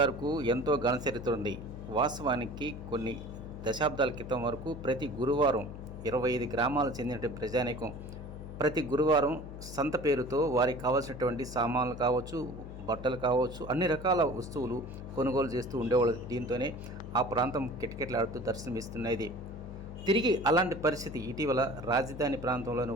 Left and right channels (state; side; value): noise; left; hum, 11 dB below the sound